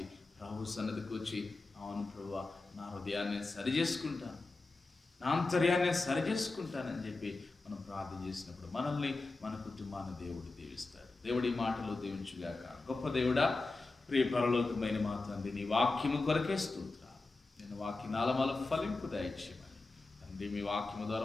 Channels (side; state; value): right; quieter; 3.4 dB